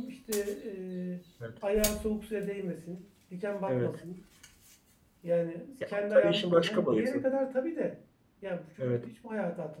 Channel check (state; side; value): identical; both; correlation 1.00